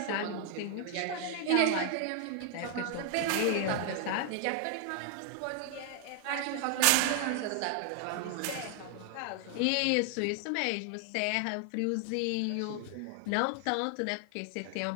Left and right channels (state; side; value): different; both; correlation 0.00